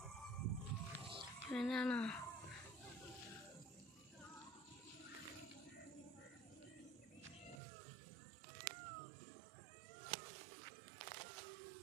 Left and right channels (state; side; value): drops out; left; at 7.6 s